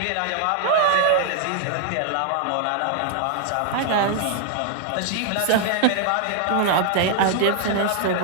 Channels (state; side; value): different; both; correlation 0.00